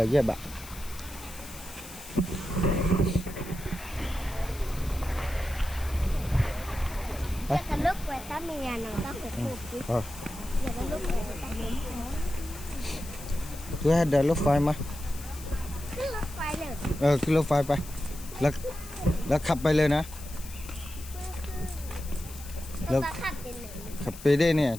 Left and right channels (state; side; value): noise; left; hiss, 15 dB below the sound